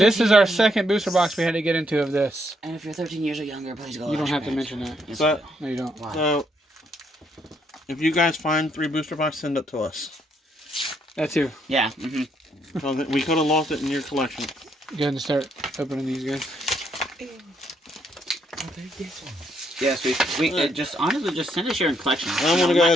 is our second booster box we had to get into of this. And if you're 13 years or younger, please go. You don't have to mention that. Yes, So, No, you don't. Why? so if you guys find 3 booster boxes, send it to us. That too. Yeah. So that we could have lost it in your collection. Go ahead and start opening these guys. Yes, we just honestly just send us your collection. I want to go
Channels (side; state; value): both; normal; correlation 0.74